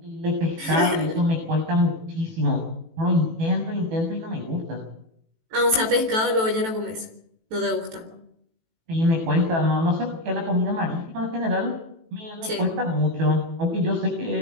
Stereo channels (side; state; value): left; late; 18 ms